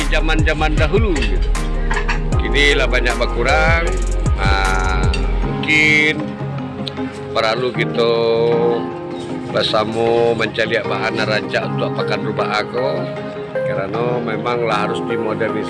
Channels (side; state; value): both; identical; correlation 1.00